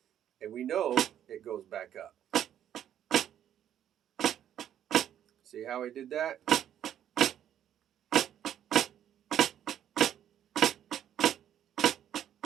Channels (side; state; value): left; quieter; 10.4 dB